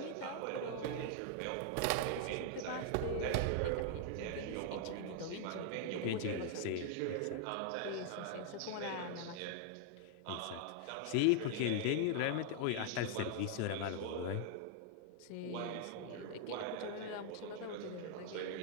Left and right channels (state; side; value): different; both; correlation 0.00